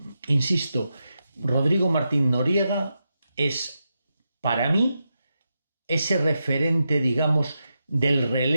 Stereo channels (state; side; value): inverted; both; correlation -0.87